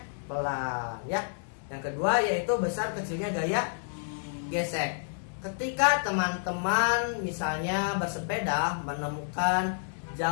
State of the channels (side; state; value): right; silent; 58 dB below the other